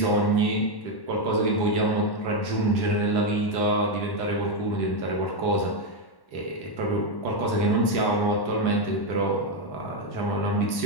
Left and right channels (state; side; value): late; right; 1.1 ms